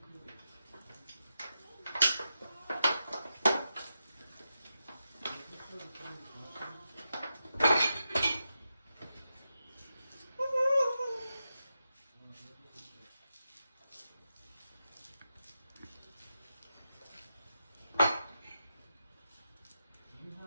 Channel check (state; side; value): inverted; both; correlation -0.88